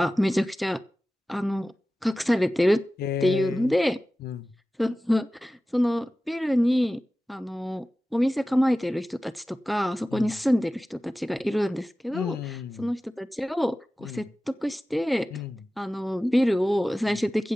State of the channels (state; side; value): normal; both; correlation 0.96